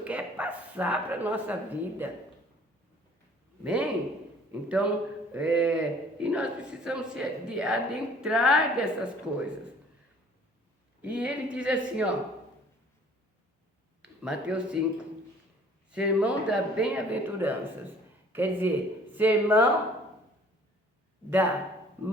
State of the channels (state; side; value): normal; both; correlation 0.53